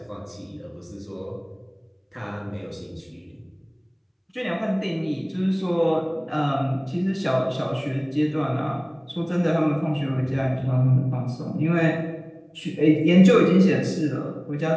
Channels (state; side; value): identical; both; correlation 1.00